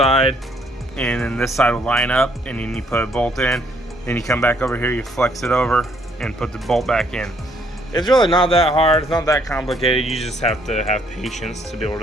and then this side will line up, and then you put a bolt in. Then you come back over here, you flex it over, and put the bolt back in. It's really not that hard. It's not that complicated. You just have to have patience to be able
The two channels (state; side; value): normal; both; correlation 0.67